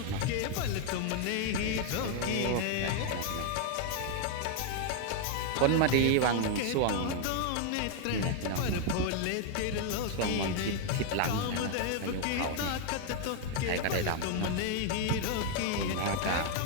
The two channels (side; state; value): both; different; correlation 0.00